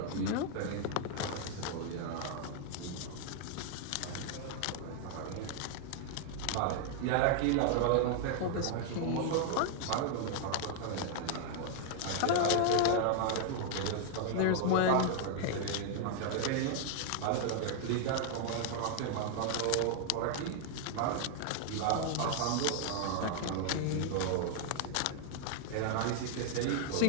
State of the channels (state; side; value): different; both; correlation 0.00